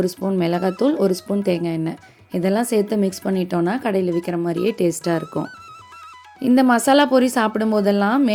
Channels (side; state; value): both; identical; correlation 1.00